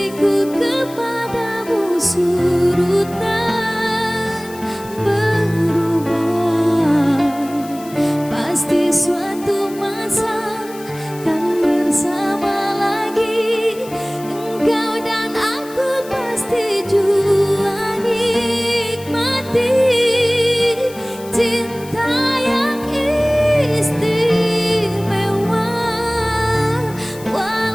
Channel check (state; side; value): noise; left; hiss, 19 dB below the sound